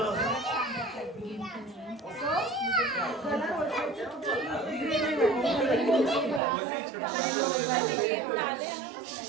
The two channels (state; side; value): drops out; left; at 6.4 s